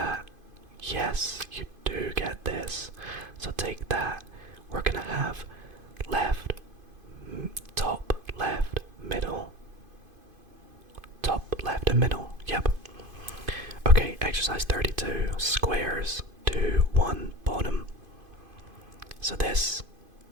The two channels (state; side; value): late; left; 2.5 ms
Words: Yes, you do get this. So take that. We're gonna have left, top, left, middle. Top, left, and middle. Yep. Okay, exercise 32. Squares. 2, 1, bottom. So this